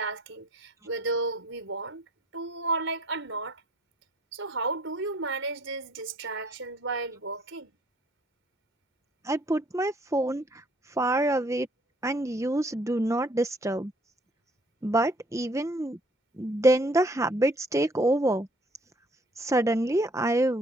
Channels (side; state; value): both; normal; correlation 0.60